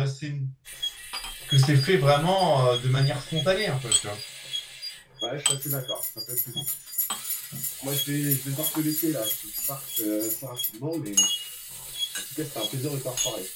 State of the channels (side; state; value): both; identical; correlation 1.00